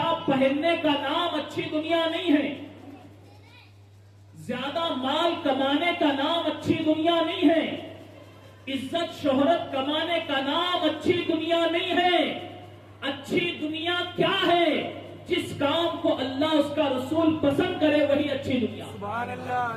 پہننے کا نام اچھی دنیا نہیں ہے. زیادہ مال کمانے کا نام اچھی دنیا نہیں ہے. عزت شہرت کمانے کا نام اچھی دنیا نہیں ہے. اچھی دنیا کیا ہے؟ جس کام کو اللہ اس کا رسول پسند کرے وہی اچھی دنیا. سبحان اللہ،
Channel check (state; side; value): identical; both; correlation 1.00